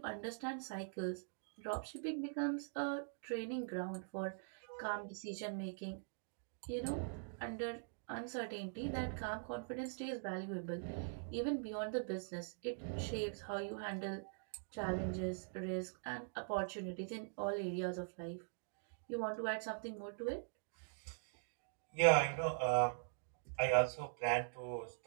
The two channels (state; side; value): silent; left; digital silence